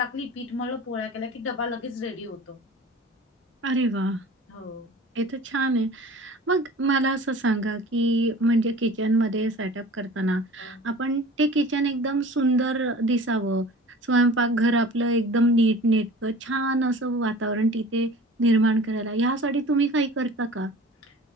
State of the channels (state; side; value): normal; both; correlation 0.42